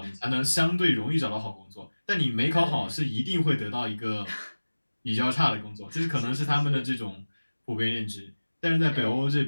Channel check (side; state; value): both; inverted; correlation -1.00